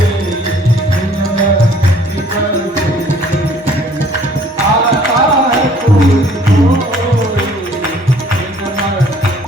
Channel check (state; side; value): normal; both; correlation 0.57